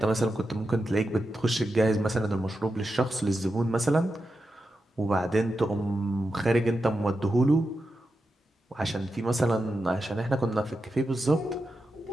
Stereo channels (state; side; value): normal; both; correlation 0.89